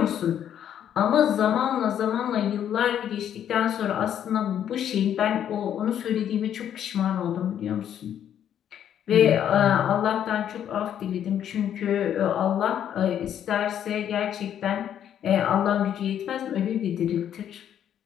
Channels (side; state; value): right; quieter; 9.8 dB